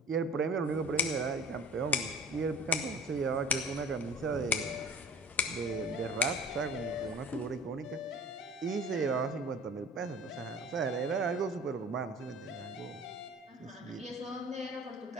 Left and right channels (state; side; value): normal; both; correlation 0.44